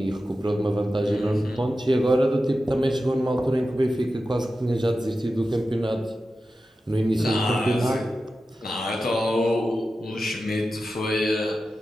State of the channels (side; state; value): both; normal; correlation 0.92